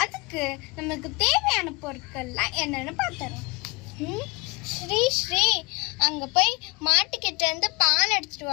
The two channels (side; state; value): right; quieter; 26.5 dB